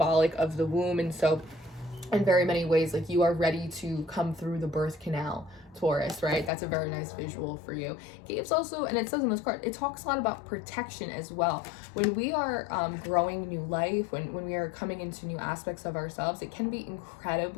of the womb, and so in very many ways, like you are ready to come through the birth canal, Taurus, right? That's a very nice visual for you. Caves also, and it says in this card, it talks a lot about protection as well. When we are growing new life, when we are coming into new aspects of ourselves, it can be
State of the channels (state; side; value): drops out; right; at 6.5 s